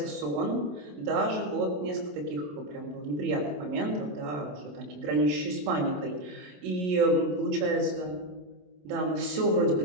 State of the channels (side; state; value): left; late; 27 ms